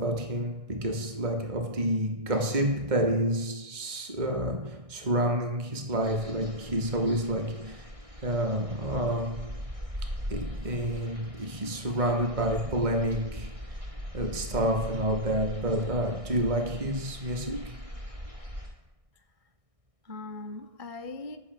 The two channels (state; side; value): late; left; 1.6 ms